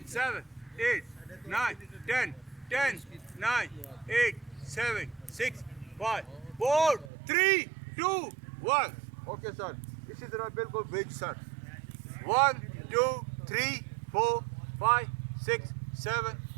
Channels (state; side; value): drops out; left; at 7.1 s